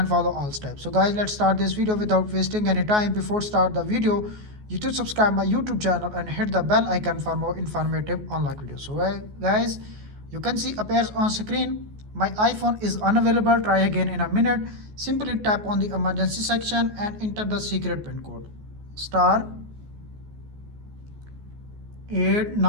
follow all steps. So guys, let's start this video without wasting any time. Before start the video, you should subscribe my YouTube channel and hit the bell icon for more informative unlock videos. So guys, you can see appears on screen. My iPhone is unavailable. Try again in a minute. Simply tap on the emergency section and enter the secret pin code star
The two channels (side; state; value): left; late; 14 ms